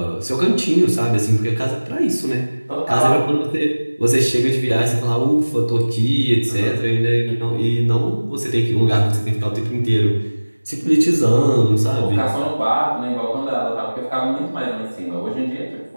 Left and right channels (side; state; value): both; inverted; correlation -1.00